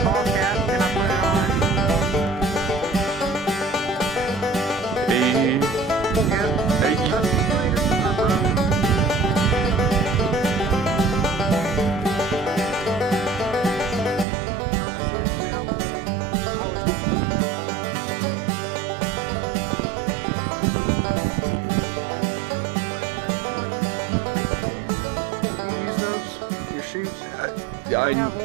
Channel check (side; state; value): left; drops out; at 14.2 s